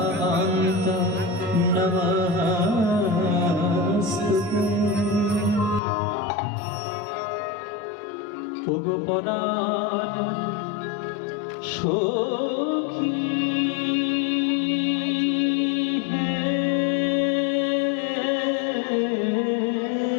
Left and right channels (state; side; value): drops out; right; at 5.8 s